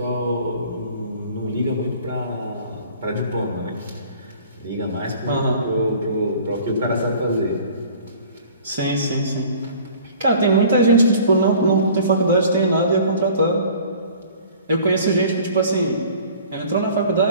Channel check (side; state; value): both; inverted; correlation -0.49